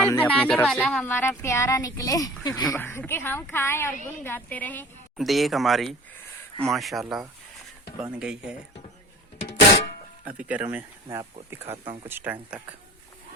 अपनी बनाने तरफ वाला से। हमारा प्यारा निकले कि हम खाएं और गुन गाते रहें। देख हमारी माशाल्लाह बन गई है। अभी गर्म है, मैं आपको दिखाता हूँ कुछ टाइम तक।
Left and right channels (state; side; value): normal; both; correlation 0.41